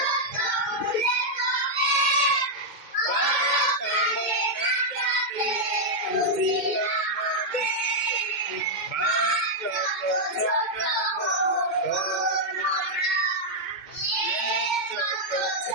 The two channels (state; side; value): late; right; 2.1 ms